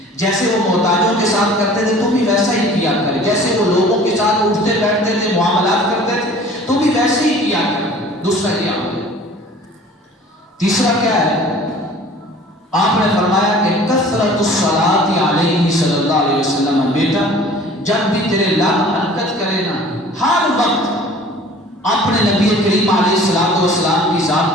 جیسے وہ محتاجوں کے ساتھ کرتے تھے تم بھی ویسا ہی کیا کریں، جیسے وہ لوگوں کے ساتھ اٹھتے بیٹھتے تھے، معاملات کرتے تھے تم بھی ویسے ہی کیا کریں۔ دوسرا یہ عمل ہے۔ تیسرا کیا ہے؟ آپ نے فرمایا کہ کثرت الصلاۃ علیہ صلی اللہ علیہ وسلم، بیٹا جب بھی تیرے لب حرکت کرے نا، ہر وقت اپنے نبی کریم علیہ الصلوۃ والسلام کی ذات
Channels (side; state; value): both; normal; correlation 0.47